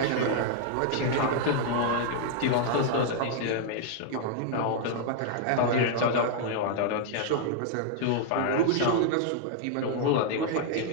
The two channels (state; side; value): different; both; correlation -0.01